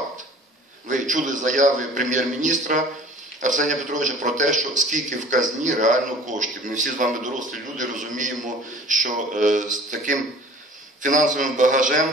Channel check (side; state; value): both; normal; correlation 0.47